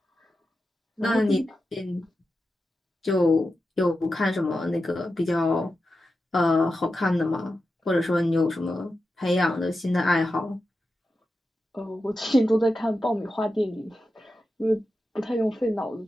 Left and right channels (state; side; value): normal; both; correlation 0.90